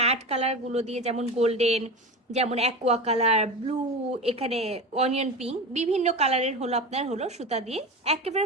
কালার গুলো দিয়ে, যেমন গোল্ডেন, যেমন অ্যাকোয়া কালার, ব্লু, এখানে অনিয়ন পিঙ্ক, বিভিন্ন কালারের হলো আপনার হলো সুতা দিয়ে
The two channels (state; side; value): normal; both; correlation 0.26